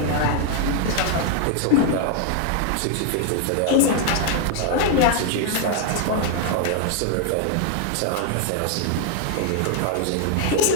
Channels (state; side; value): different; both; correlation 0.00